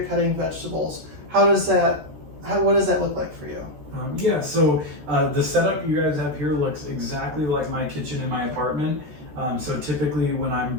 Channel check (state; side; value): late; left; 13 ms